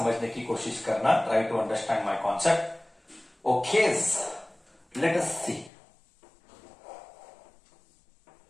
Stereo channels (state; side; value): drops out; right; at 5.7 s